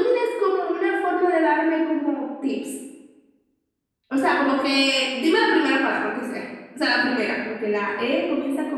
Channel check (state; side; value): identical; both; correlation 1.00